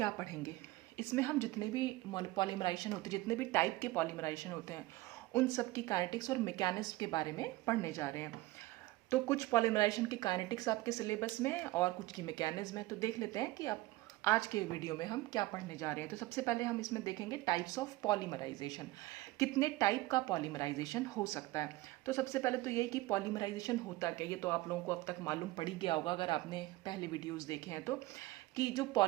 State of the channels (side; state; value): left; quieter; 18.9 dB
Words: पढ़ेंगे? इसमें हम जितने भी पॉलीमराइजेशन होते हैं, जितने भी टाइप के पॉलीमराइजेशन होते हैं, उन सब की काइनेटिक्स और मैकेनिज्म के बारे में पढ़ने जा रहे हैं। तो कुछ पॉलीमराइजेशन की काइनेटिक्स आपके सिलेबस में है और कुछ की मैकेनिज्म है। तो देख लेते हैं कि आप आज के वीडियो में हम क्या पढ़ने जा रहे हैं। तो सबसे पहले हम इसमें देखेंगे टाइप्स ऑफ पॉलीमराइजेशन, कितने टाइप का पॉलीमराइजेशन हो सकता है। तो सबसे पहले तो यही कि पॉलीमराइजेशन होता क्या, ये तो आप लोगों को अब तक मालूम पड़ ही गया होगा अगर आपने पहले वीडियोस देखे हैं तो, कि जो